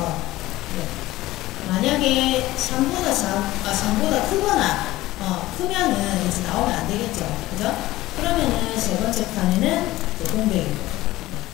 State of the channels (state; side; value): quieter; right; 17.2 dB